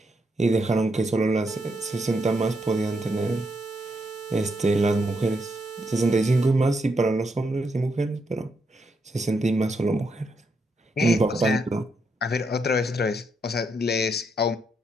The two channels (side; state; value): both; normal; correlation 0.79